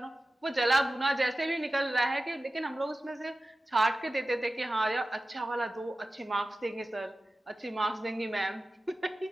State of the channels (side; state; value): both; normal; correlation 0.95